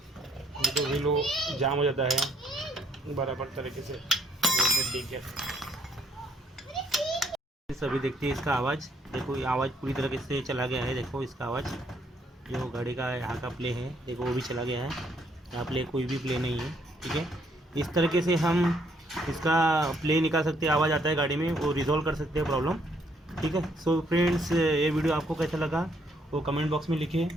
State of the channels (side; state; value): both; normal; correlation 0.70